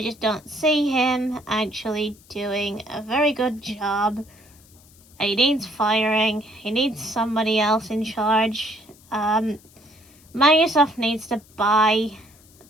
just don't see him actually doing a very good job. He needs firing. He needs somebody else in charge. Microsoft needs to buy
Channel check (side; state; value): left; noise; hiss, 27 dB below the sound